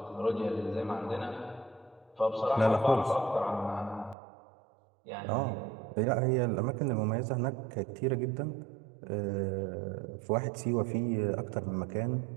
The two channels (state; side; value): drops out; left; at 4.2 s